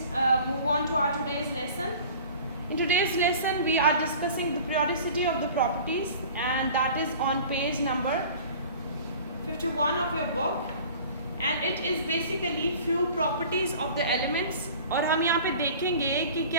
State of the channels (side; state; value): both; inverted; correlation -0.44